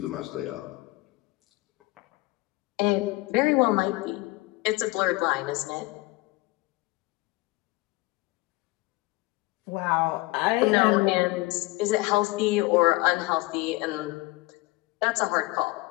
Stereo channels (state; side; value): quieter; right; 21.6 dB